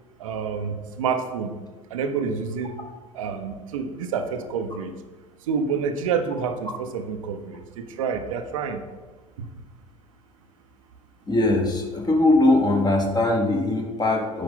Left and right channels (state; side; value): normal; both; correlation 0.49